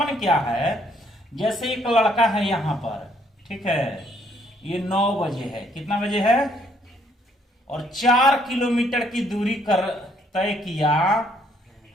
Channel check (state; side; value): normal; both; correlation 0.66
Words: क्या है? जैसे एक लड़का है यहाँ पर, ठीक है, ये 9 बजे है, कितना बजे है, और 4 किलोमीटर की दूरी कर तय किया